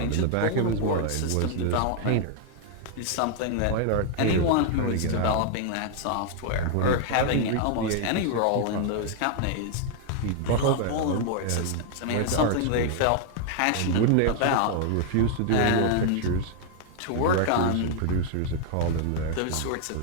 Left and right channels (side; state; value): both; different; correlation 0.00